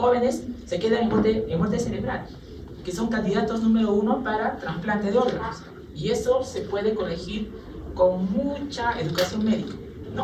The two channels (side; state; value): both; identical; correlation 1.00